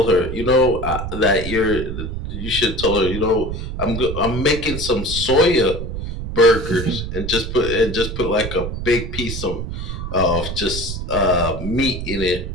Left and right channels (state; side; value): noise; right; rumble, 6 dB below the sound